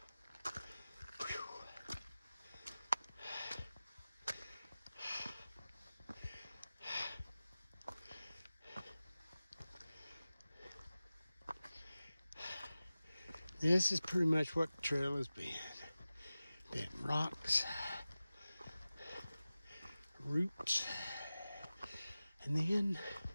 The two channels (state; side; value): inverted; both; correlation -0.96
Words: This is pretty much what the trail has been. Been rocks, roots, and then you